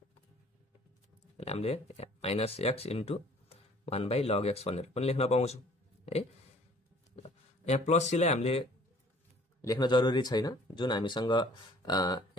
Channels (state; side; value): normal; both; correlation 0.54